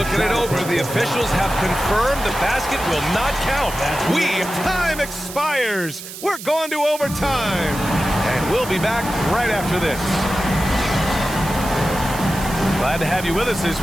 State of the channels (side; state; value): right; noise; hiss, 12 dB below the sound